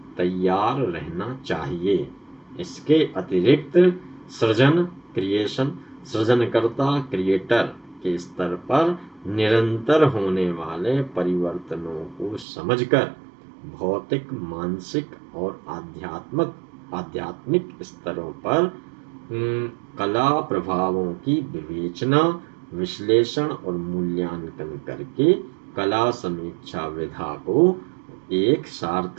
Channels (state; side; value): drops out; left; at 12.5 s